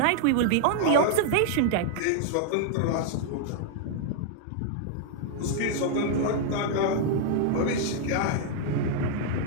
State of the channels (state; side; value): different; both; correlation 0.00